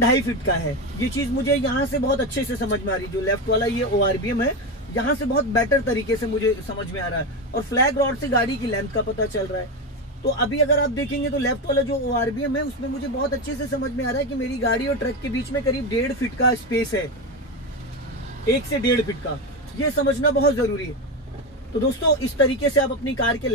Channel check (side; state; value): both; normal; correlation 0.15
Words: फीट का है। ये चीज मुझे यहाँ से बहुत अच्छे से समझ में आ रही है। जो लेफ्ट वाला ये ओआरबीएम है, यहाँ से बहुत बेटर तरीके से मुझे समझ में आ रहा है, और फ्लैग रॉड से गाड़ी की लेंथ का पता चल रहा है। तो अभी अगर आप देखेंगे तो लेफ्ट वाला जो ओआरबीएम है उसमें मुझे बहुत अच्छे से समझ में आ रहा है कि मेरी गाड़ी और ट्रक के बीच में करीब 1.5 फीट का स्पेस है, 1 से 1.5 फीट का। ये समझना बहुत जरूरी है। तो दोस्तों इस तरीके से आप अपनी कार के